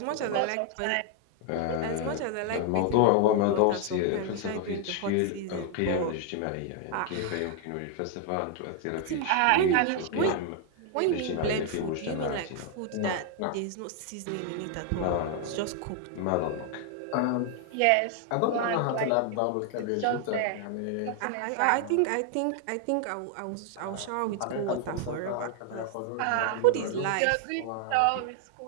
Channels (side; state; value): both; different; correlation 0.00